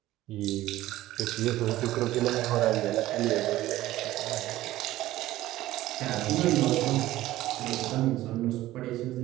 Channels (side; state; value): left; quieter; 15.6 dB